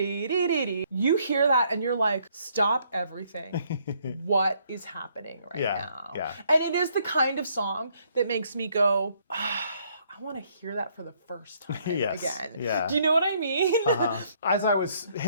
hear that and you're like, stop everything. What is happening right now? Yeah. And it is the kind of song that makes me go, I want to hear that for the first time again. Yeah. Do you know what I mean? As I was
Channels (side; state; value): both; inverted; correlation -0.68